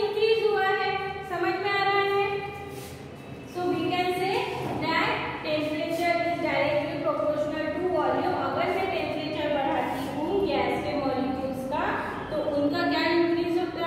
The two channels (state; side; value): identical; both; correlation 1.00